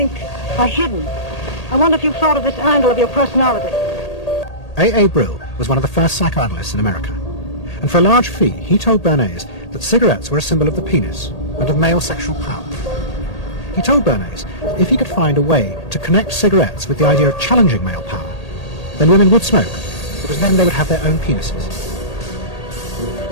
are hidden. I wonder if you've thought of this angle of your personality. A. Brill was one of the first psychoanalysts in America, and for a large fee he told Bernays that cigarettes were a symbol of the penis and of male sexual power. He told Bernays that if he could find a way to connect cigarettes with the idea of challenging male power, then women would smoke, because then they would have their own penises.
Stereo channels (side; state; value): right; late; 1.8 ms